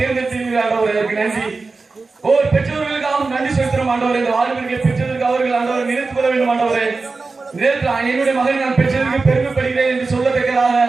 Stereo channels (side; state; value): left; quieter; 4.0 dB